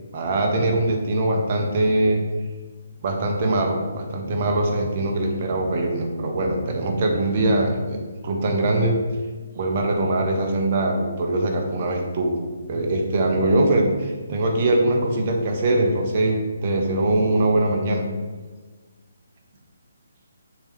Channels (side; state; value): both; inverted; correlation -0.74